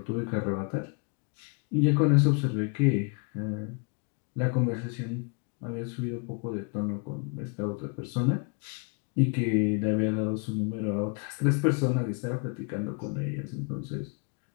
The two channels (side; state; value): right; quieter; 35.5 dB